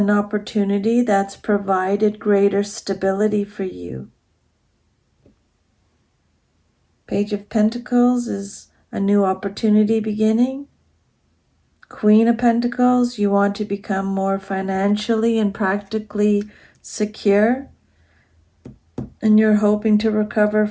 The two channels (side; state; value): both; identical; correlation 1.00